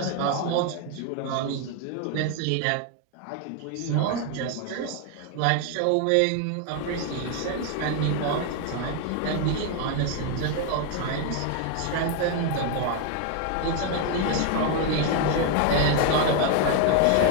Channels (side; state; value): both; different; correlation 0.01